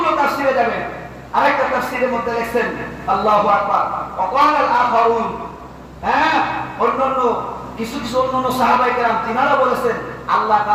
তাফসীরে যাবেন আরেকটা তাফসীরের মধ্যে লিখছেন আল্লাহু আকবার ওয়া ক্বালা আল আখারুন অন্যান্য কিছু অন্যান্য সাহাবায়ে কেরাম তিনারা বলেছেন আল্লাহ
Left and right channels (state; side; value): identical; both; correlation 1.00